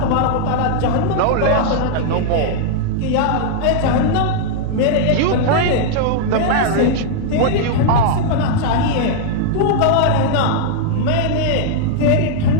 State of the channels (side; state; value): both; different; correlation -0.01